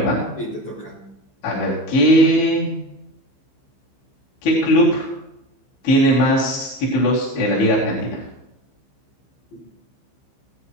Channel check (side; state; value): right; late; 15 ms